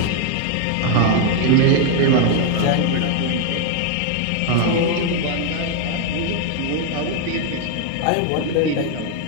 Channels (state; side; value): different; both; correlation 0.01